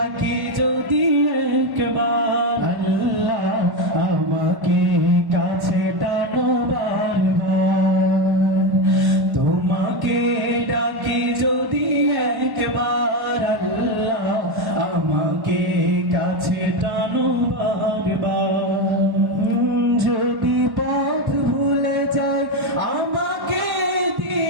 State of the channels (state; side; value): late; left; 1.1 ms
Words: যদি একবার আল্লাহ আমাকে কাছে টানো বারবার তোমাকে ডাকি যদি একবার আল্লাহ আমাকে কাছে টানো বারবার যদি পথ ভুলে যাই আমাকে